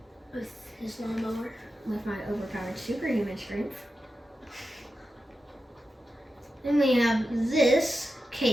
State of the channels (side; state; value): both; normal; correlation 0.91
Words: With his lawnmower. with my overpowered superhuman strength. Then we have this